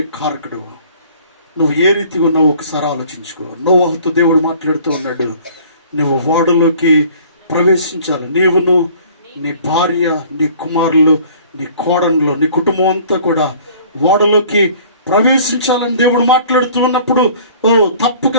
కారకుడు. నువ్వు ఏ రీతిగా ఉన్నావో ఒకసారి ఆలోచించుకో. నోవహుతో దేవుడు మాట్లాడుతూ ఉన్నాడు, నువ్వు వాడలోకి ప్రవేశించాలి. నీవును, నీ భార్య, నీ కుమారులు, నీ కోడన్లు, నీ కుటుంబం అంతా కూడా వాడలోకి ప్రవేశించాలని దేవుడు మాట్లాడుతూ ఉన్నప్పుడు తప్పక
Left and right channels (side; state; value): both; inverted; correlation -0.51